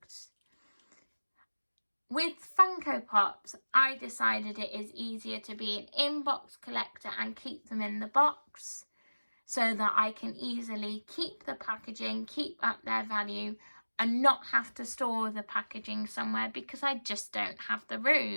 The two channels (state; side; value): inverted; both; correlation -1.00